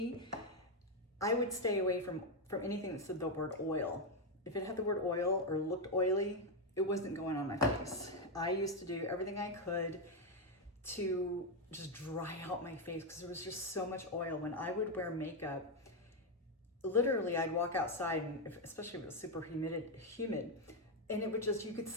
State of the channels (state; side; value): normal; both; correlation 0.04